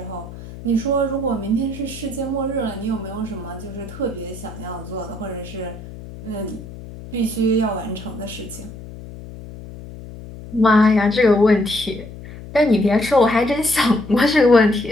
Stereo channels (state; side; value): noise; left; hum, 14 dB below the sound